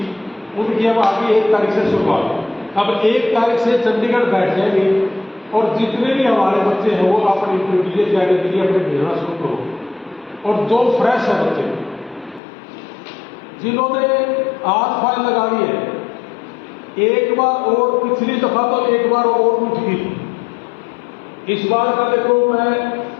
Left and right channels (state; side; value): drops out; right; at 12.4 s